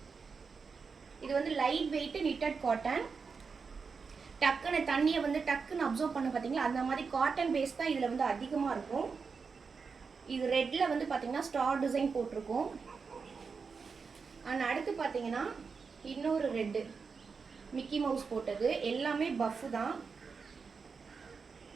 இது வந்து லைட் வெயிட் நிட்டட் காட்டன். டக்குன்னு தண்ணியை வந்து டக்குன்னு அப்சர்வ் பண்ண பார்த்தீங்களா, அந்த மாதிரி காட்டன் பேஸ் தான் இதில் வந்து அதிகமாக இருக்கும். இது ரெட்டில் வந்து பார்த்தீங்கன்னா ஸ்டார் டிசைன் போட்டிருக்கும். அண்ட் அடுத்து பார்த்தீங்கன்னா இன்னொரு ரெட்டு மிக்கி மவுஸ் போட்டது. எல்லாமே பஃப் தான்.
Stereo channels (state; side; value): quieter; left; 5.2 dB